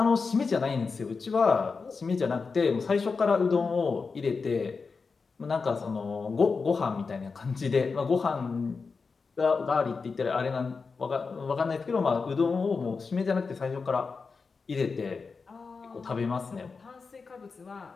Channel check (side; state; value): right; quieter; 4.7 dB